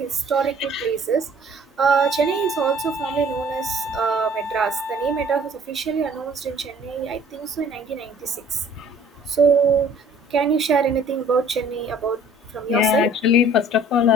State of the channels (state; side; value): normal; both; correlation 0.53